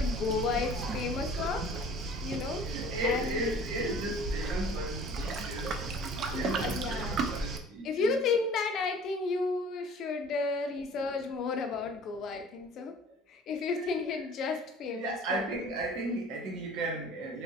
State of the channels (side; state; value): both; normal; correlation 0.48